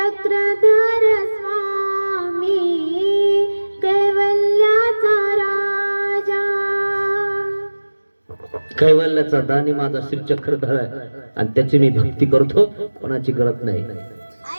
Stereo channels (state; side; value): inverted; both; correlation -1.00